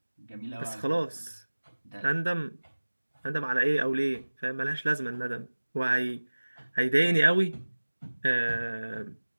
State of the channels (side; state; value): both; inverted; correlation -1.00